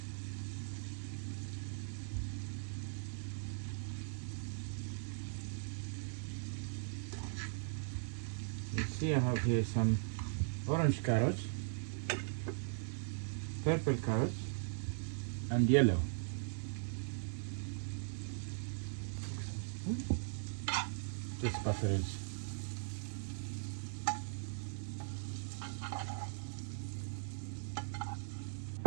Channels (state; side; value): silent; left; digital silence